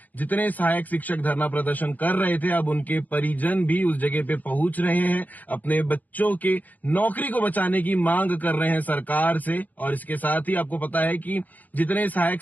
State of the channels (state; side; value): late; right; 0.081 ms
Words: जितने सहायक शिक्षक धरना प्रदर्शन कर रहे थे अब उनके परिजन भी उस जगह पे पहुंच रहे हैं, अपने बच्चों के नौकरी को बचाने की मांग कर रहे हैं सरकार से। और इसके साथ ही आपको पता है कि जितने